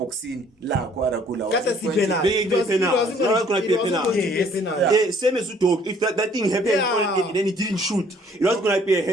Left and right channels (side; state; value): both; normal; correlation 0.59